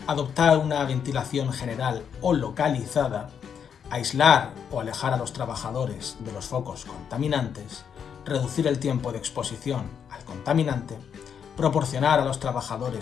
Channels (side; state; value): right; quieter; 7.6 dB